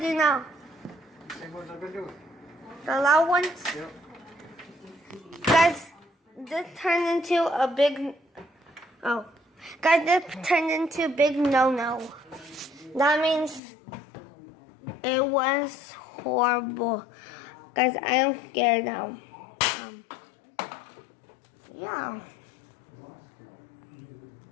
now? Same ones I've been doing. The loud ones? Yep. Guys, this turned into a big... Oh. Guys, this turned into a big no-no. That means it was horrible. Guys, I am scared now. Yeah.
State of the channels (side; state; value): right; drops out; at 13.6 s